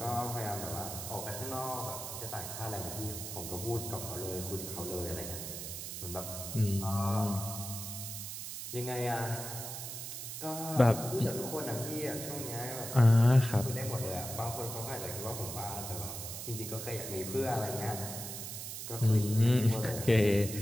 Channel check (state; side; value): noise; right; hiss, 7 dB below the sound